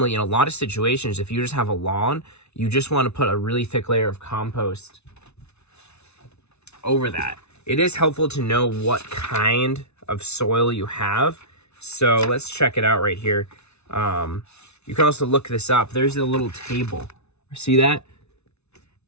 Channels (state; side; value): late; right; 0.81 ms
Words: in a lot of situations, if you just have a lawn, you just want to put a really thick layer of compost over that. It is helpful to know what kind of soil you have. So let's check it out right here. You can also look this up. There's a little table. See that?